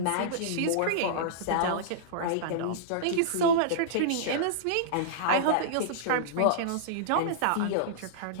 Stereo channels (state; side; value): different; both; correlation -0.02